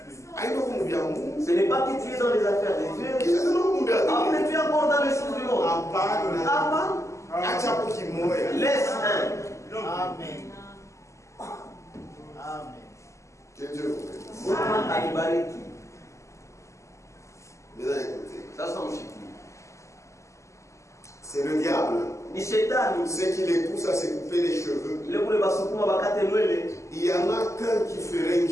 Ce n'est pas que tu es dans les affaires de Dieu. Après, tu es encore dans les choses du monde. Laisse un. Amen. Amen. Que Dieu vous bénisse. Mesdames, écoutez. C'est le diable. Ce qui les pousse à se couper les cheveux. Il y en a qu'un qui ferait une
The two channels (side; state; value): right; late; 0.14 ms